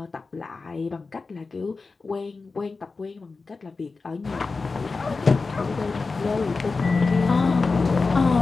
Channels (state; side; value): quieter; right; 4.1 dB